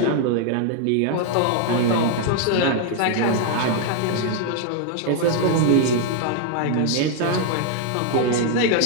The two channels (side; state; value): both; different; correlation 0.00